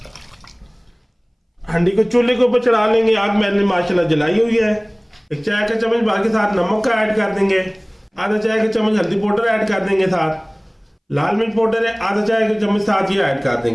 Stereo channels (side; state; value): both; identical; correlation 1.00